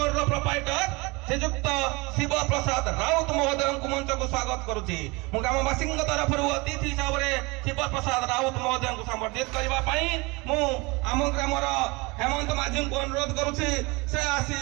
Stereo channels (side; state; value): left; quieter; 25.6 dB